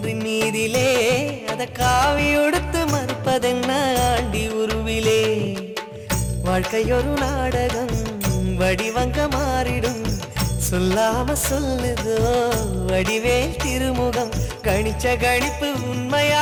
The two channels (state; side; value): identical; both; correlation 1.00